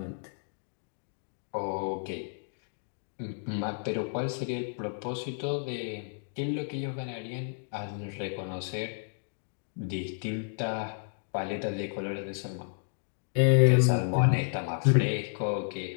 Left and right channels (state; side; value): silent; right; digital silence